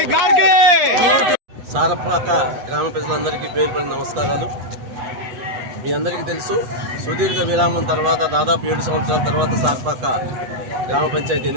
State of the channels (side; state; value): left; late; 8.1 ms